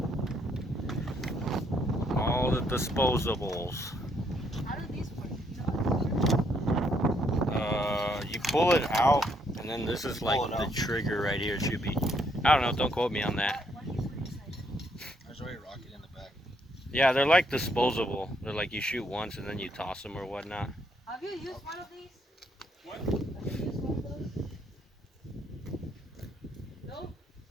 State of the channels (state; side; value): normal; both; correlation 0.72